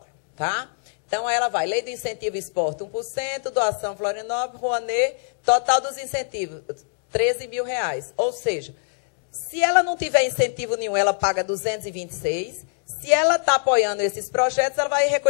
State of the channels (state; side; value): silent; right; digital silence